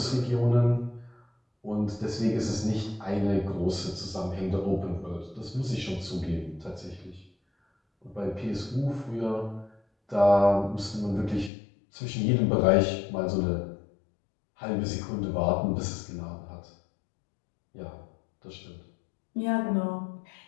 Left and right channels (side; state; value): right; drops out; at 11.5 s